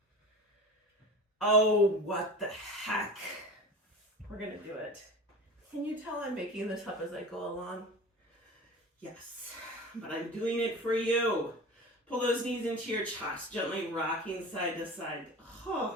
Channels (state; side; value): normal; both; correlation 0.34